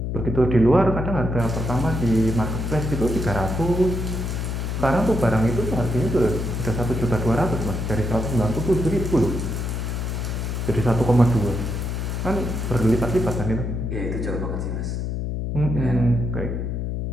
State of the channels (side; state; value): left; noise; hum, 2 dB below the sound